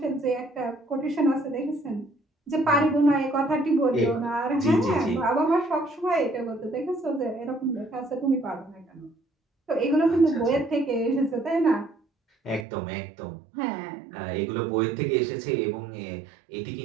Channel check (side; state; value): left; drops out; at 12.7 s